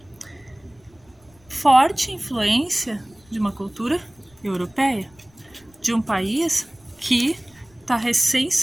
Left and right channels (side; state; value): left; noise; rumble, 30 dB below the sound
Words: Forte influência de uma cultura europeia, de um país que está recém